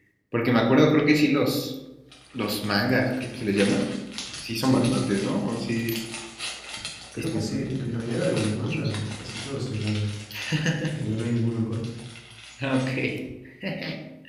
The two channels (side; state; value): both; identical; correlation 1.00